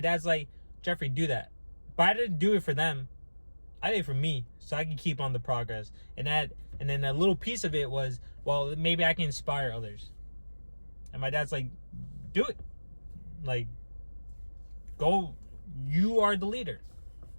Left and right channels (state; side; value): inverted; both; correlation -1.00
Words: like, Jeffrey, do that. But I didn't do it for them. I did it for me, so I can keep on the progress. And then a little piece of it was, well, maybe I can inspire others. And my dad's like, do it. Like, go. You are the leader.